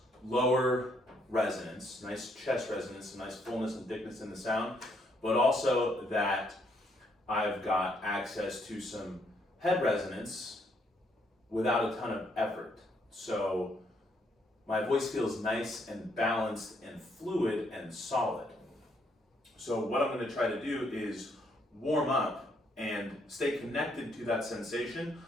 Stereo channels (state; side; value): normal; both; correlation 0.72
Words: lower resonance, nice chest resonance, nice fullness and thickness in the sound, but also that I've got access to some head resonance without a ton of effort. So my voice feels nice and balanced and fluid and solid. So what I'm going to try to do is warm up and stay connected to that sensation